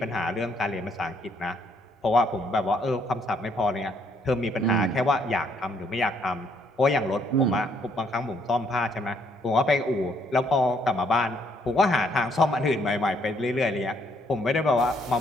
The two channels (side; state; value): both; normal; correlation 0.68